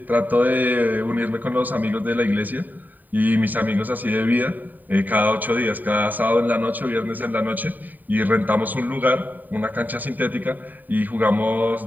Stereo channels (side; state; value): left; late; 0.087 ms